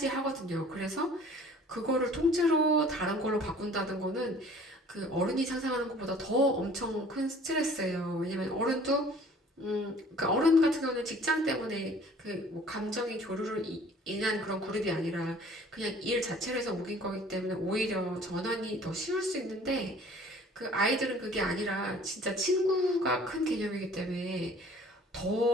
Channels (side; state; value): both; normal; correlation 0.51